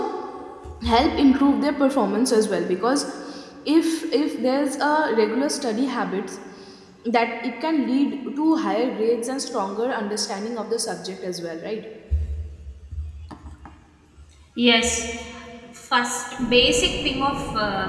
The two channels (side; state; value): both; identical; correlation 1.00